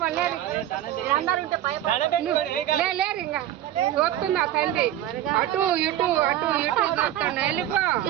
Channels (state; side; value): quieter; left; 12.5 dB